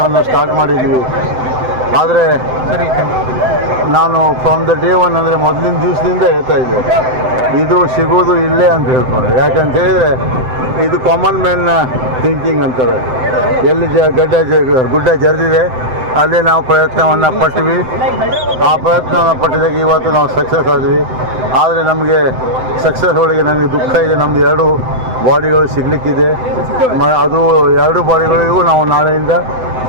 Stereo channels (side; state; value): left; late; 7.8 ms